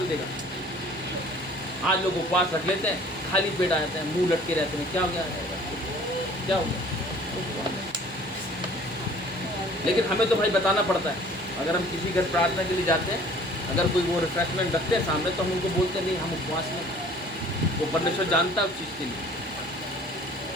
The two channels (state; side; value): normal; both; correlation 0.51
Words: देगा। आज लोग उपवास रख लेते हैं, खाली पेट आ जाते हैं, मुंह लटके रहते हैं, क्या हो गया, क्या हो गया। लेकिन हमें तो भाई बताना पड़ता है। अगर हम किसी घर प्रार्थना के लिए जाते हैं, अगर कोई वो रिफ्रेशमेंट रखते हैं सामने, तो हम उनको बोलते नहीं हम उपवास में। वो परमेश्वर जानता है उस चीज़ के लिए।